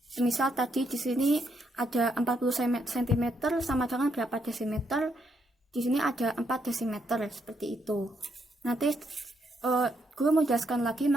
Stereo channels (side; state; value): both; normal; correlation 0.76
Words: Misal tadi di sini ada 40 cm sama dengan berapa desimeter. Di sini ada 4 desimeter, seperti itu. Nanti guru menjelaskan lagi